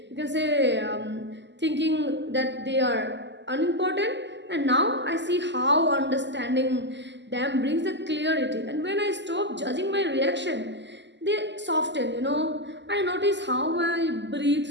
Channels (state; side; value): late; left; 0.51 ms